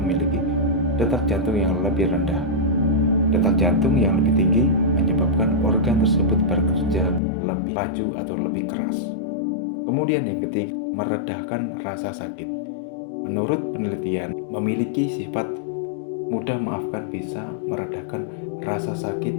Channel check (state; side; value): drops out; right; at 7.2 s